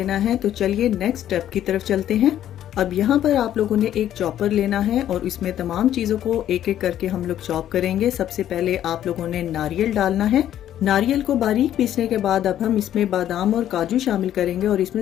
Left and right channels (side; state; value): right; quieter; 11.4 dB